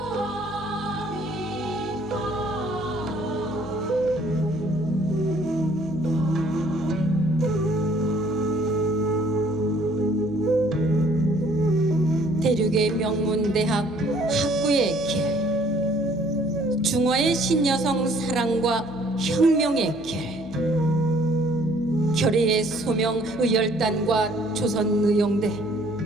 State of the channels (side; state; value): left; noise; hum, 21 dB below the sound